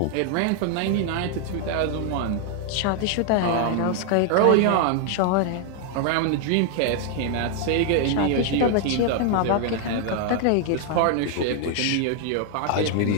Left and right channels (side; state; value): both; different; correlation 0.00